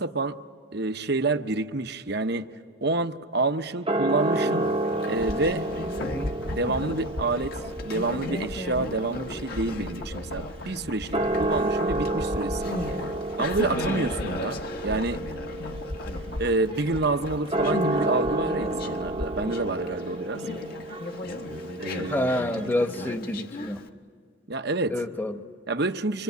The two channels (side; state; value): both; normal; correlation 0.28